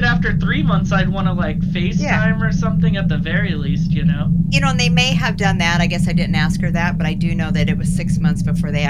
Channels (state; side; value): identical; both; correlation 1.00